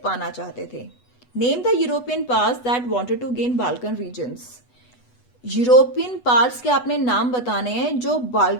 पाना चाहते थे। Name the European powers that wanted to gain Balkan regions. European powers के आपने नाम बताने हैं जो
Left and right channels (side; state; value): right; late; 8.1 ms